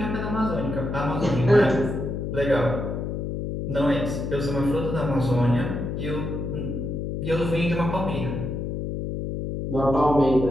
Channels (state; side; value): noise; left; hum, 4 dB below the sound